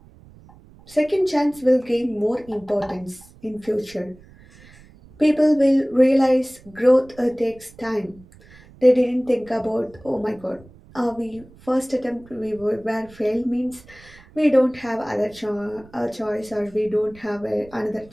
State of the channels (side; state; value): right; noise; rumble, 24 dB below the sound